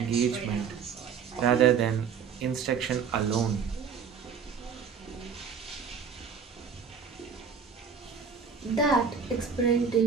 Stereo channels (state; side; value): quieter; left; 6.4 dB